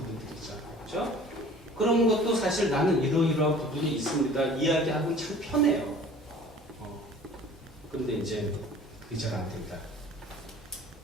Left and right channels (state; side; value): normal; both; correlation 0.47